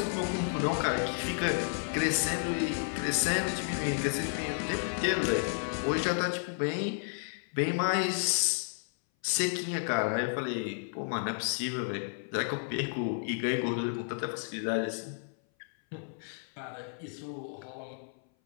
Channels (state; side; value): silent; right; 56 dB below the other